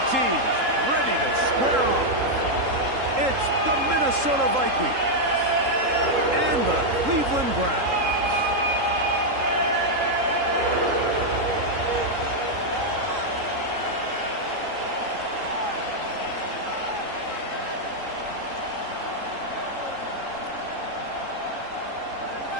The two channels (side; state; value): left; late; 3.8 ms